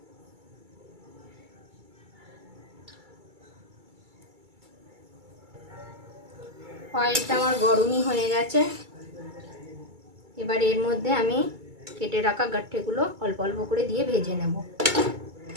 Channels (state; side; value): late; left; 2.3 ms